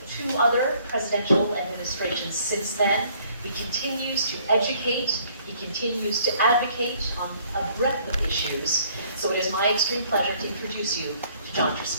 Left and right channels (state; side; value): inverted; both; correlation -0.61